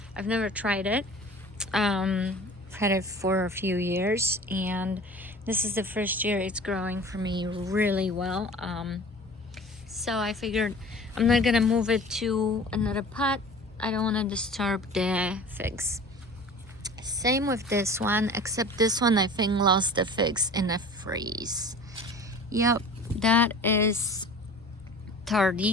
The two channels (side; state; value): both; normal; correlation 0.41